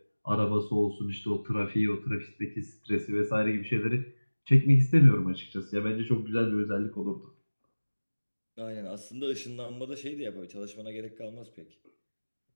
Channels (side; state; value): both; inverted; correlation -1.00